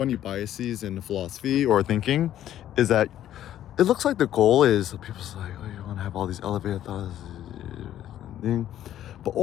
biases in philosophy or thinking is that it looks like the goal is, people's like, oh, you want to have all these elevated thoughts, but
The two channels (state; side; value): quieter; right; 11.8 dB